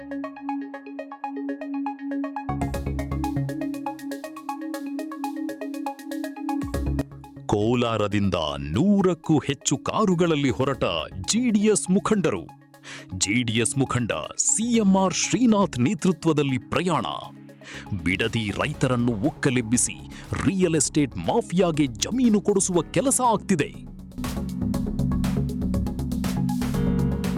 ಕೋಲಾರದಿಂದ 100ಕ್ಕೂ ಹೆಚ್ಚು ಕಾರುಗಳಲ್ಲಿ ಹೊರಟ ಜೆಡಿಎಸ್ ಮುಖಂಡರು. ಜೆಡಿಎಸ್ ಮುಖಂಡ ಸಿಎಂಆರ್ ಶ್ರೀನಾಥ್ ನೇತೃತ್ವದಲ್ಲಿ ಪ್ರಯಾಣ. ಬಿಡದಿ ರೈತರನ್ನು ಒಕ್ಕಲೆಬ್ಬಿಸಿ ರಿಯಲ್ ಎಸ್ಟೇಟ್ ಮಾಫಿಯಾಗೆ ಜಮೀನು ಕೊಡಿಸುವ ಕೆಲಸ ಆಗ್ತಿದೆ.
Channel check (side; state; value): both; identical; correlation 1.00